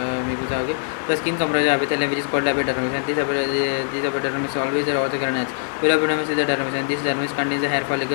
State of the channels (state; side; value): silent; right; digital silence